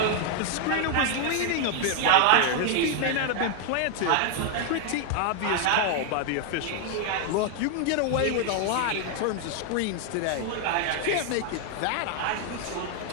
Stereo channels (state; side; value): different; both; correlation 0.00